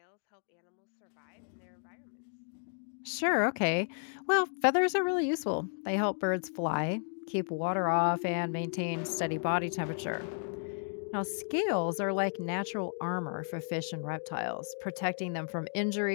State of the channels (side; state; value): right; silent; 56 dB below the other